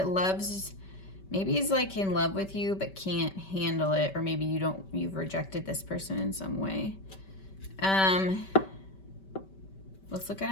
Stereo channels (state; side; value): late; right; 5.2 ms